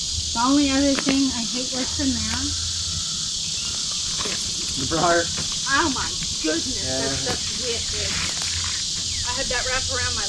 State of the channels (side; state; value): both; identical; correlation 1.00